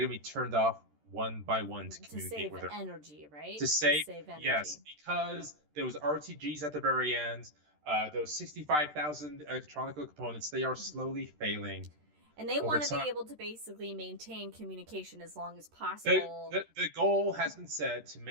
to be turned off one by one to communicate save with her. energy, right? To save, energy. yes, because there was RTGs at the very end. Those 65,000 electronic components, they are slowly failing. And they over want to time. be able to basically maintain communication as long as The, possible. the goal has been set to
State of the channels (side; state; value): left; late; 13 ms